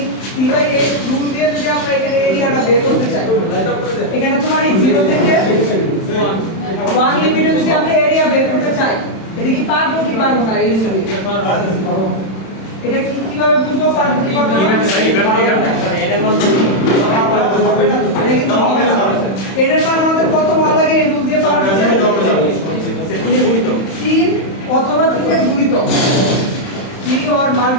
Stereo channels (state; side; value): late; right; 31 ms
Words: 3/8 রুল দিয়ে যদি আমরা এখানে এরিয়াটা বের করতে চাই এখানে তোমার এই 0 থেকে 1 লিমিটে যদি আমরা এরিয়া বের করতে চাই এটা কি পারবো কি পারবো না এই হিসাবে এটা কিভাবে বুঝবো পারবো কি পারবো না এর মান আমাদের কত বার লাগে এই রুল দিয়ে পাওয়া যাচ্ছে 3 অথবা 3 এর গুণিতক 3 or